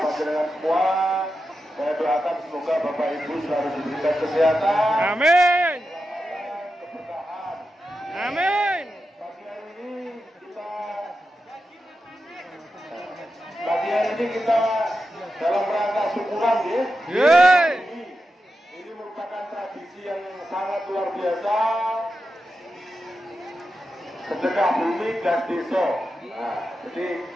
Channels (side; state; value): both; normal; correlation 0.89